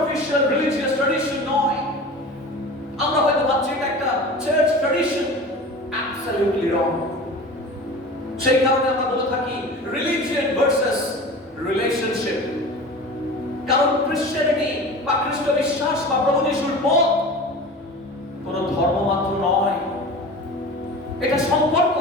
রিলিজিয়াস ট্র্যাডিশন নয়। আমরা হয়তো ভাবছি এটা একটা চার্চ ট্র্যাডিশন, অ্যাবসলিউটলি রং। সেই কারণে আমরা বলে থাকি রিলিজিয়ন ভার্সেস রিলেশনশিপ। কারণ ক্রিশ্চিয়ানিটি বা খ্রিস্ট বিশ্বাস বা প্রভু যিশুর পথ কোন ধর্ম মাত্র নয়, এটা সম্পর্ক।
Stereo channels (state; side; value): normal; both; correlation 0.36